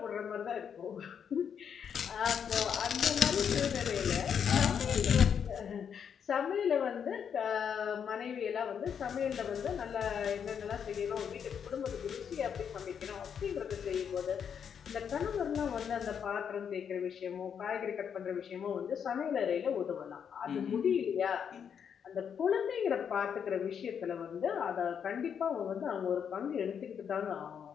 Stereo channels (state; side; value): quieter; right; 7.6 dB